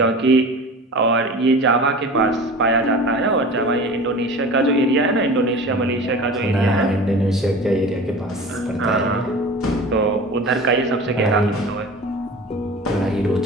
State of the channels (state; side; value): normal; both; correlation 0.37